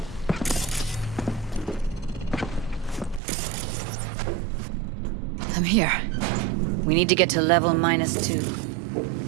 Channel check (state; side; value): drops out; left; at 3.2 s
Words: I'm here. We need to get to level